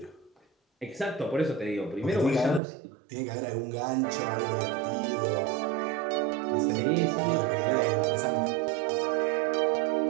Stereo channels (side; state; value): left; drops out; at 2.6 s